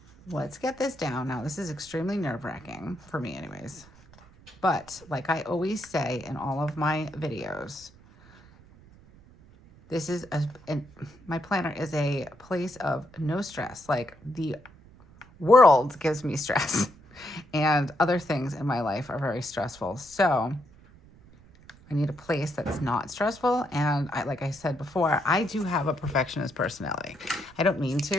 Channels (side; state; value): right; noise; rumble, 24 dB below the sound